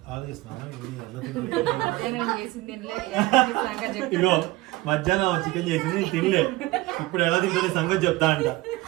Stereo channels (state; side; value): quieter; left; 19.6 dB